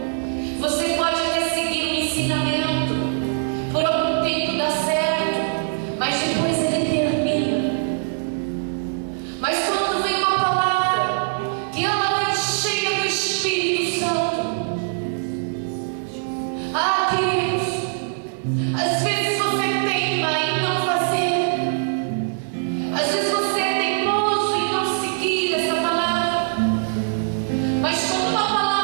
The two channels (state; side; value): silent; left; digital silence